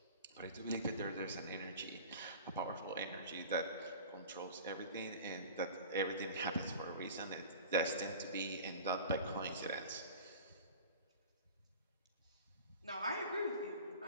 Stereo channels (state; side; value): inverted; both; correlation -0.39